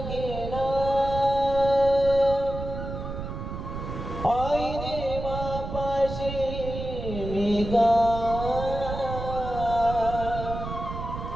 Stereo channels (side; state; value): right; noise; rumble, 7 dB below the sound